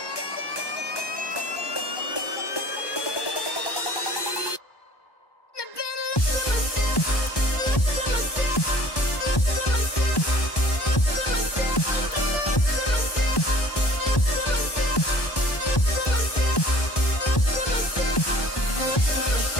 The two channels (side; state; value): right; late; 1.1 ms